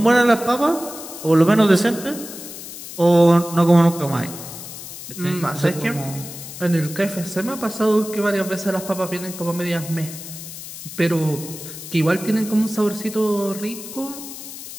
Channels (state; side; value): noise; left; hiss, 12 dB below the sound